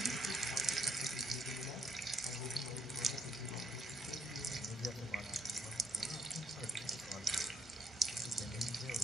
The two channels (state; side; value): normal; both; correlation 0.71